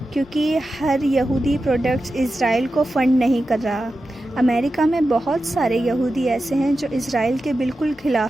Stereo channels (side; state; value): both; normal; correlation 0.92